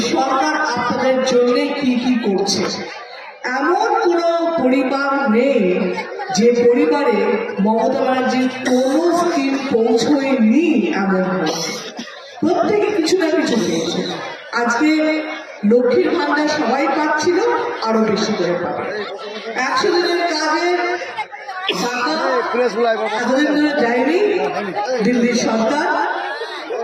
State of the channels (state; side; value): identical; both; correlation 1.00